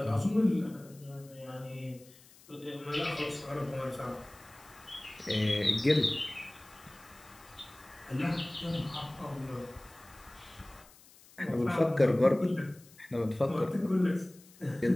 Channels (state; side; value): noise; left; hiss, 24 dB below the sound